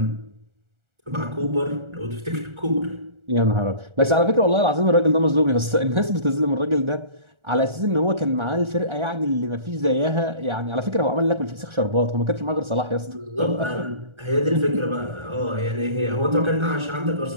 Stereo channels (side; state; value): left; late; 1.4 ms